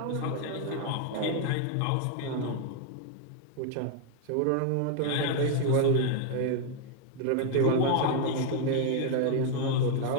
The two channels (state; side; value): different; both; correlation 0.00